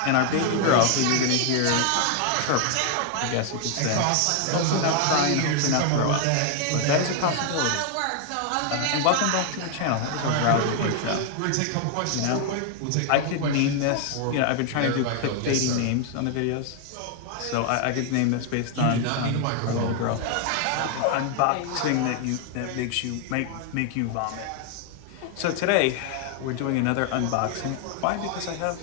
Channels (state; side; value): different; both; correlation 0.00